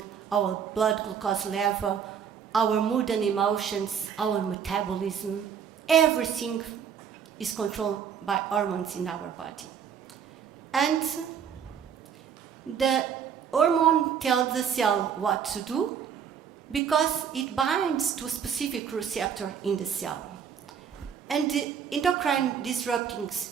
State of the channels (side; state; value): left; quieter; 7.7 dB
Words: our blood glucose level, our mood and emotions, our metabolism. Everything is controlled by hormones in our body. And the hormone tells the cell what to do because it binds to a specific receptor in the cell. And the endocrine disrupting